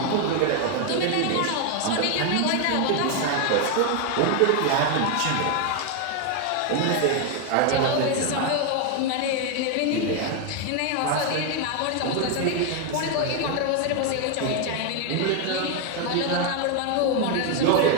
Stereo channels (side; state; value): both; different; correlation 0.01